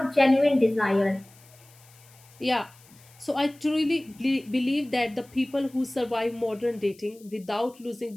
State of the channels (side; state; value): left; noise; hiss, 26 dB below the sound